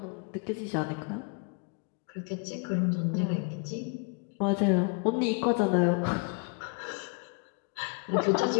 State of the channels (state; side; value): quieter; right; 35.8 dB